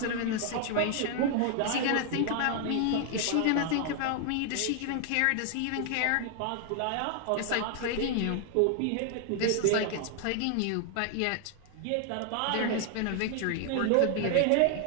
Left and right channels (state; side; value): different; both; correlation 0.00